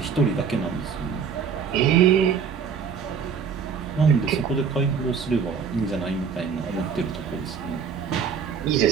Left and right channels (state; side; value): quieter; left; 6.5 dB